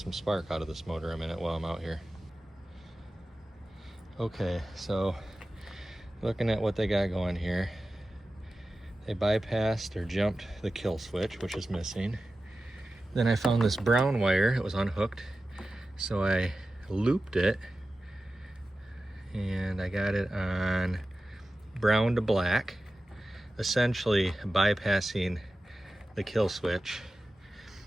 spark out of this motor a minute while I'm out here. Okay, so looking at what they got going here, they bypassed or jumped the kill switch, which is missing. Then I found this brown wire, it was unhooked, so I looped it and I got it on brown to black, essentially bypassing the kill switch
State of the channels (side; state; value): both; normal; correlation 0.94